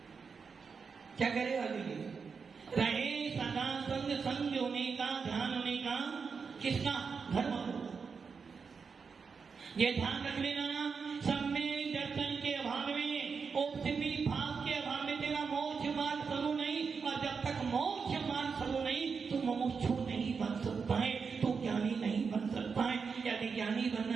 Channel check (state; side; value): quieter; left; 5.5 dB